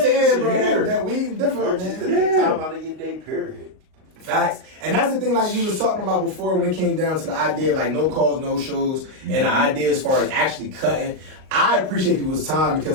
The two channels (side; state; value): left; late; 38 ms